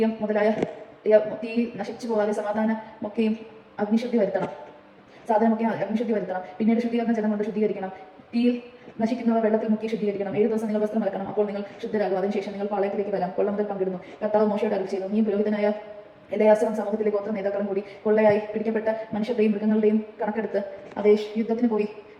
മുതലായ തീയിൽ നശിച്ചു പോകാതെ സമാധാനമൊക്കെയും അഗ്നിശുദ്ധി വരുത്തണം. പിന്നീട് ശുദ്ധീകരണ ജലം കൊണ്ട് ശുദ്ധീകരിക്കണം. തീയിൽ നശിക്കുന്നവ വെള്ളത്തിൽ മുക്കി ശുദ്ധീകരിക്കണം. 7 ദിവസം നിങ്ങൾ വസ്ത്രം അലക്കണം. അപ്പോൾ നിങ്ങൾ ശുദ്ധരാകും. അതിനുശേഷം നിങ്ങൾ പാളയത്തിലേക്ക് വരാം. കൊള്ള മുതൽ പങ്കിടുന്നു. കർത്താവ് മോശയോട് അരുളിച്ചെയ്തു, നീ പുരോഹിതനായ എലിയാസറും സമൂഹത്തിലെ ഗോത്ര നേതാക്കളും കൂടി കൊള്ളയായി പിടിക്കപ്പെട്ട മനുഷ്യരുടെയും മൃഗങ്ങളുടെയും കണക്കെടുത്ത് യുദ്ധത്തിന്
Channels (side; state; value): both; identical; correlation 1.00